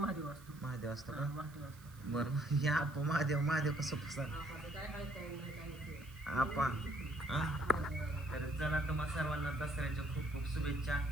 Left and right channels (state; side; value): noise; right; hiss, 23 dB below the sound